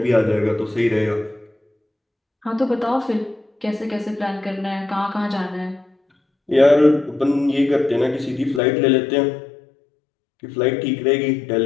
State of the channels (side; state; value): right; drops out; at 8.6 s